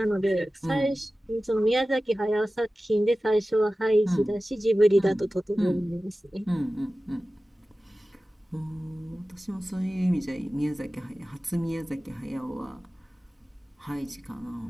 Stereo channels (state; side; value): normal; both; correlation 0.96